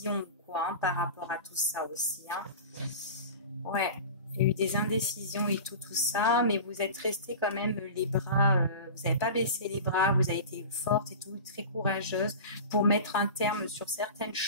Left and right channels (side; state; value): both; inverted; correlation -0.33